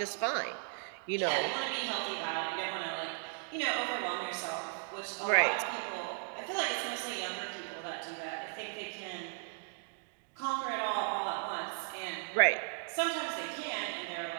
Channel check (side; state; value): left; silent; 54 dB below the other